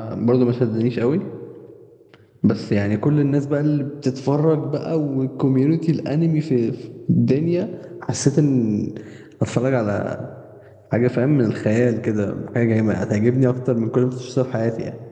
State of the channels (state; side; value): identical; both; correlation 1.00